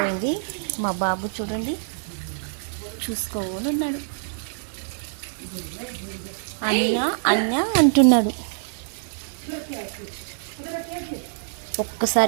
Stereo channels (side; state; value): left; silent; digital silence